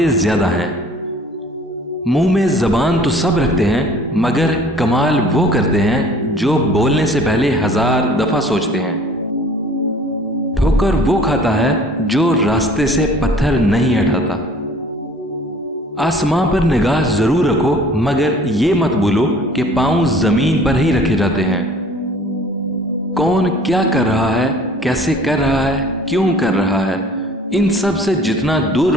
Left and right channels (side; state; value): both; normal; correlation 0.50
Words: زیادہ ہیں۔ منہ میں زبان تو سب رکھتے ہیں، مگر کمال وہ کرتے ہیں جو بولنے سے پہلے 1000 دفعہ سوچتے ہیں۔ ٹھوکر وہ کھاتا ہے جو راستے سے پتھر نہیں ہٹاتا۔ آسمان پر نگاہ ضرور رکھو، مگر یہ مت بھولو کہ پاؤں زمین پر ہی رکھے جاتے ہیں۔ کون کیا کر رہا ہے، کیسے کر رہا ہے، کیوں کر رہا ہے، ان سب سے جتنا دور